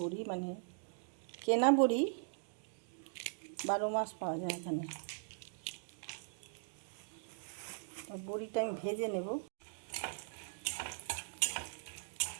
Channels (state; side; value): silent; left; digital silence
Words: বড়ি, মানে কেনা বড়ি 12 মাস পাওয়া যায় এখানে। বড়িটা আমি ভেজে নেব।